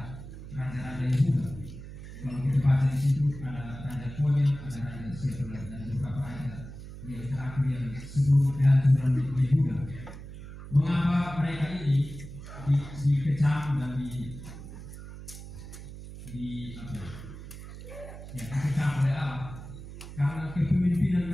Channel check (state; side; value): noise; right; hum, 13 dB below the sound